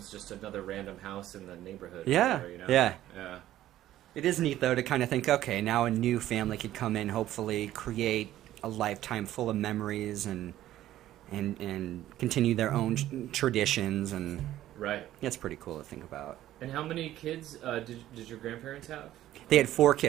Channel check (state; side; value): quieter; left; 13.5 dB